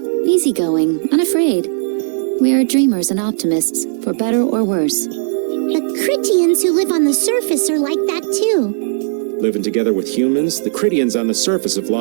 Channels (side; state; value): left; silent; 69 dB below the other